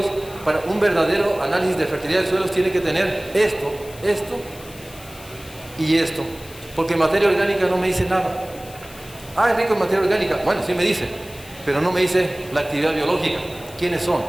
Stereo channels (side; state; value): left; noise; hiss, 19 dB below the sound